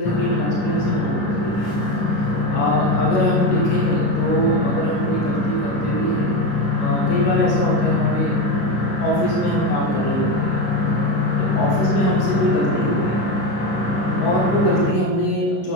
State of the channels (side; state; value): right; late; 11 ms